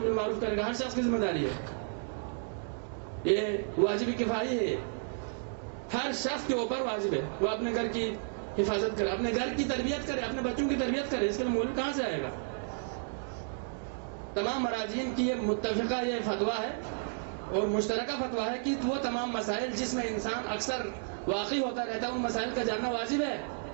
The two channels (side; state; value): left; silent; digital silence